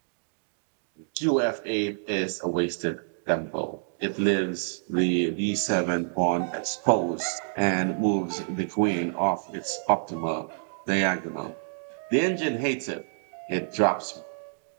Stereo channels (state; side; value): silent; left; digital silence